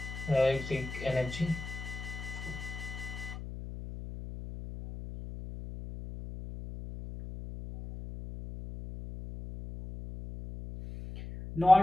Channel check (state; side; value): noise; left; hum, 10 dB below the sound